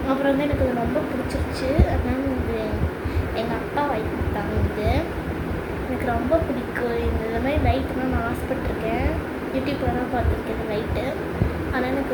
அப்புறம் வந்து எனக்கு இது ரொம்ப பிடிச்சிருச்சு. அதனால இது எங்கள் அப்பா வாங்கி கொடுத்தாங்க. இது எனக்கு ரொம்ப பிடிக்கும். இந்த மாதிரி லைட்டுலாம் நான் ஆசைப்பட்டிருக்கேன். யூடியூப்பில் தான் பார்த்துருக்கேன் இந்த லைட்டு. ஆனால் எனக்கு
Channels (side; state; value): both; identical; correlation 1.00